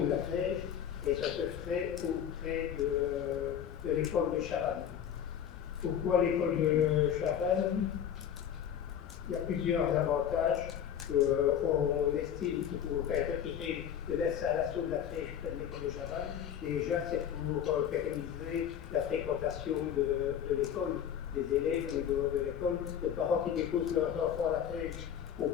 de la crèche, et ça se ferait auprès de l'école de Chavannes. Pourquoi l'école de Chavannes? Il y a plusieurs avantages qu'on estime pour retirer de l'installation de la crèche près de l'école de Chavannes. Déjà, c'est pour pérenniser la fréquentation de l'école, des élèves au niveau de l'école. Les parents qui déposent leurs enfants à la crèche ont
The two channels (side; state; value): right; quieter; 9.1 dB